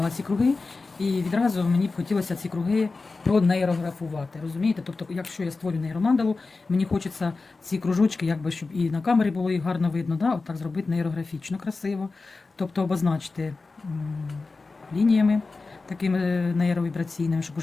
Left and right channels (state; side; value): quieter; right; 3.8 dB